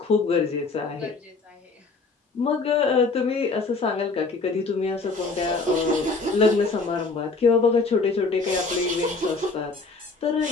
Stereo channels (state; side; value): quieter; right; 4.0 dB